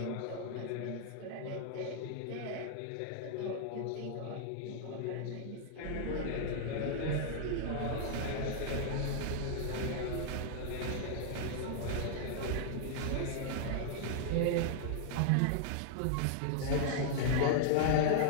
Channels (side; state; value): both; different; correlation -0.01